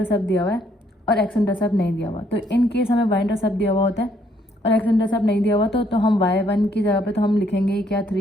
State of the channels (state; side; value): normal; both; correlation 0.69